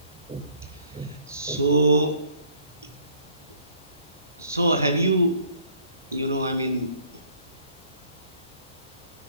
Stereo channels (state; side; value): inverted; both; correlation -0.62